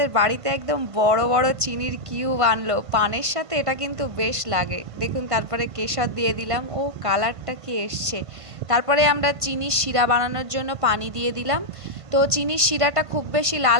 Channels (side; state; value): left; late; 1.5 ms